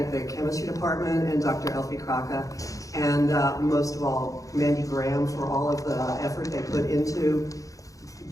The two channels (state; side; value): late; right; 0.16 ms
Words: the chemistry department and Dr. Elfe Kraka, and most of all, Mandy Graham for all of the effort they put into